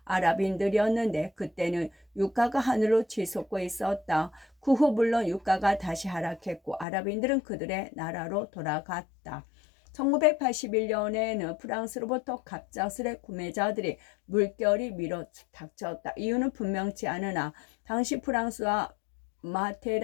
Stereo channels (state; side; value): drops out; right; at 6.9 s